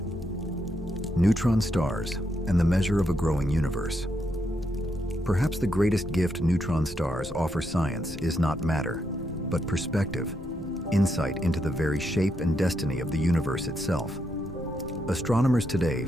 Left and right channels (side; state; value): both; normal; correlation 0.80